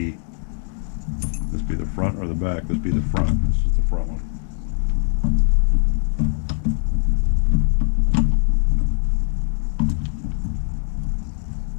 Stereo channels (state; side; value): silent; right; digital silence